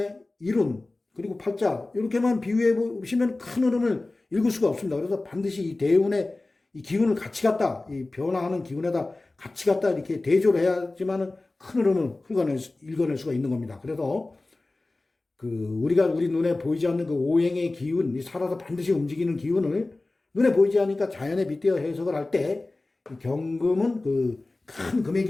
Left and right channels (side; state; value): right; quieter; 3.1 dB